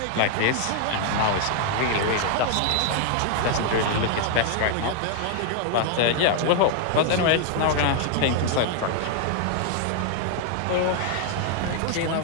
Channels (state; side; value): different; both; correlation 0.00